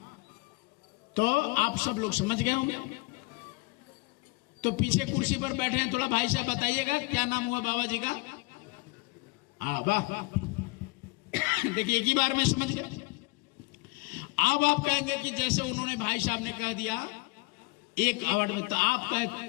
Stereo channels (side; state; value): right; quieter; 26.2 dB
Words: तो आप सब लोग समझ गए होंगे। तो पीछे कुर्सी पर बैठे हैं, थोड़ा भाई साहब बताइएगा क्या नाम हुआ बाबा जी का। हाँ वाह, देखिए एक ही बार में समझ गए। अब आप कहेंगे कि जैसे उन्होंने भाई साहब ने कह दिया एक अवार्ड में, तो आपका